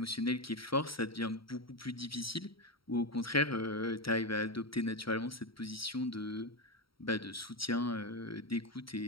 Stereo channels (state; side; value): late; right; 0.75 ms